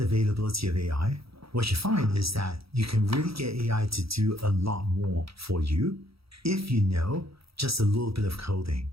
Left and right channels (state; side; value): late; left; 0.76 ms